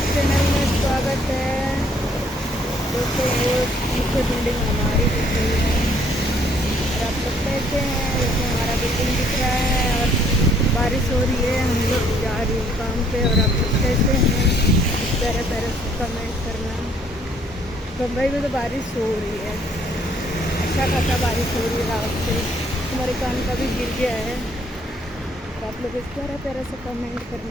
चैनल में स्वागत है। दोस्तों वो पीछे बिल्डिंग हमारी दिख रही है और आप लोग कैसे हैं? देखिए हमारा बिल्डिंग दिख रहा है और बारिश हो रही है। हम लोग जा रही हूँ काम पे और आप लोग कैसे हैं? प्यारे प्यारे से कमेंट करना। बम्बई में तो बारिश हो रही है, अच्छा खासा बारिश हो रही है। रात से हमारे कान का भी गिर गया है। तो आप लोग इस प्यारा प्यारा से कमेंट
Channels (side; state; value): both; normal; correlation 0.64